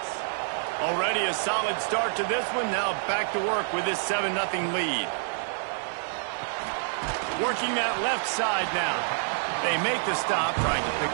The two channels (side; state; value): left; silent; digital silence